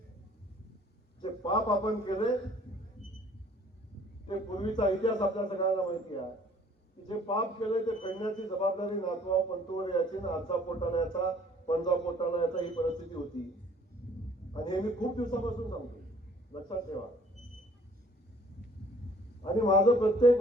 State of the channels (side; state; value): both; normal; correlation 0.56